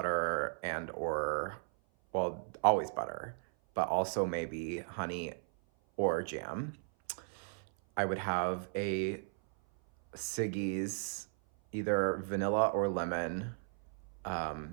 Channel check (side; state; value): left; silent; 54 dB below the other